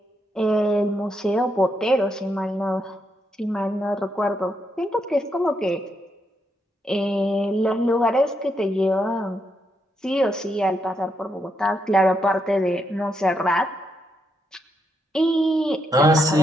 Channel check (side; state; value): both; normal; correlation 0.80